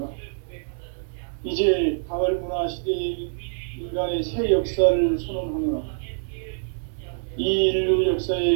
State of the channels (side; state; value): left; silent; 62 dB below the other